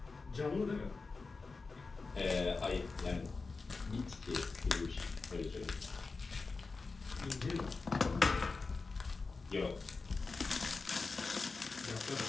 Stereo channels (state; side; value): quieter; right; 4.1 dB